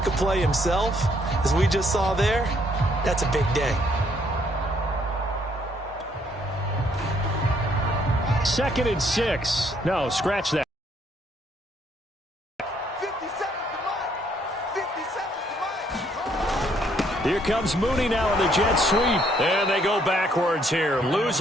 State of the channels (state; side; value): normal; both; correlation 0.68